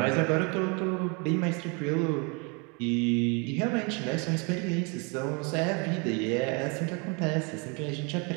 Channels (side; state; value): left; quieter; 32.2 dB